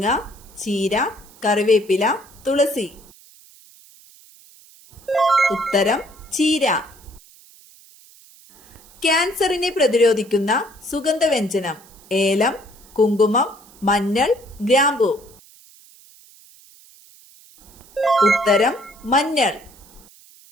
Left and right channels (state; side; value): noise; right; hiss, 25 dB below the sound